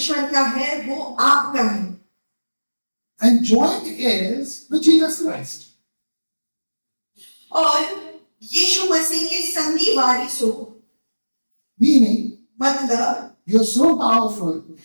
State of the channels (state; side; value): inverted; both; correlation -1.00